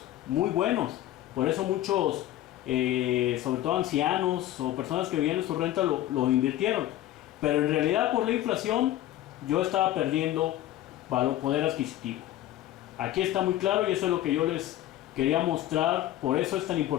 Muy buenos. Por eso muchos, sobre todo ancianos o personas que vivían de su renta, lo invirtieron. Pero en realidad, por la inflación, yo estaba perdiendo poder adquisitivo. Aquí está muy claro, y eso es lo que yo les quería mostrar. Por eso es tan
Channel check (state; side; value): quieter; right; 13.9 dB